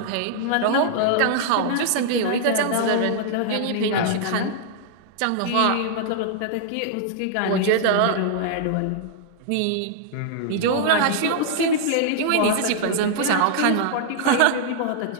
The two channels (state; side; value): different; both; correlation -0.01